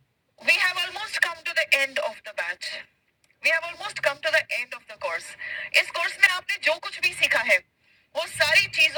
we have almost come to the end of the batch. We have almost come to the end of the course. इस कोर्स में आपने जो कुछ भी सीखा है वो सारी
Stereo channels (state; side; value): identical; both; correlation 1.00